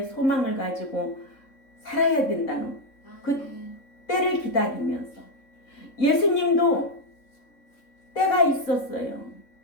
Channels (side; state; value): right; late; 3.7 ms